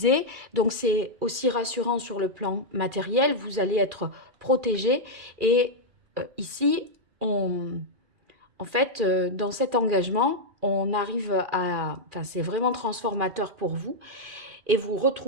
Donc c'est aussi rassurant sur le plan matériel, vous allez être protégé. Et ici, en fait, dans cet engagement, on arrive à... Enfin, c'est vraiment transformateur pour vous. Et vous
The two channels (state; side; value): late; left; 2.4 ms